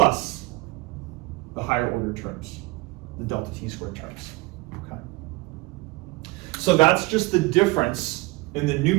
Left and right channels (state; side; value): quieter; left; 22.9 dB